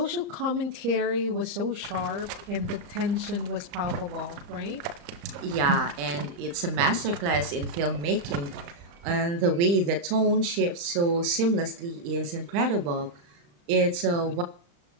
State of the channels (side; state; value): left; late; 35 ms